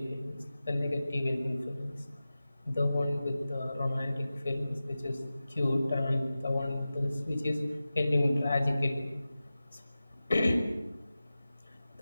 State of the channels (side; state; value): both; inverted; correlation -0.95